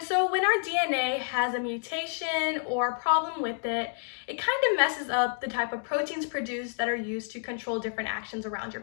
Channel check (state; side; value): silent; right; 57 dB below the other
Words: so when our DNA has a mutation or a problem with it, it kind of messes up the type of proteins produced that are used to control different actions around your